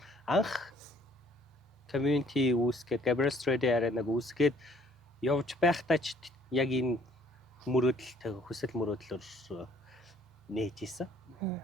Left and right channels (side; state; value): both; normal; correlation 0.60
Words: Анх community үүсгээд Gabriel Strade Arena-г үүсгээд явж байхдаа ч яг энэ мөрөөдөлтэй хүсэл мөрөөдлөөр нээж исэн.